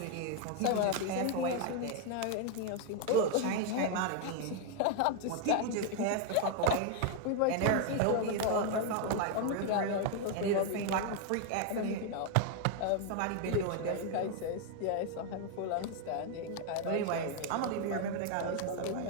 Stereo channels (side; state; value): both; different; correlation 0.00